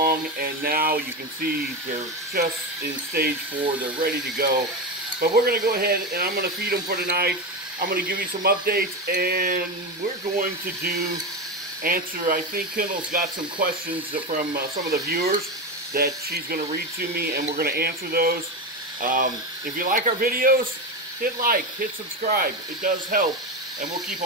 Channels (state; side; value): normal; both; correlation 0.17